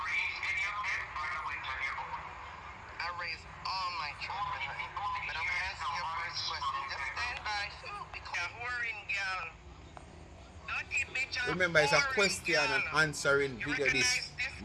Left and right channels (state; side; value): identical; both; correlation 1.00